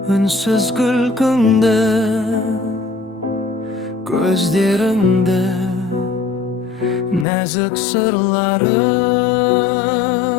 үнсіз күлкіңді, көздеріңді, нәзік сырлары.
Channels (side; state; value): right; drops out; at 7.2 s